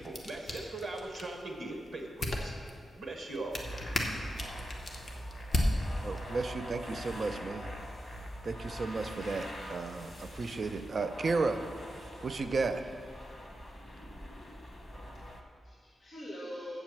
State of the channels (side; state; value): both; normal; correlation 0.89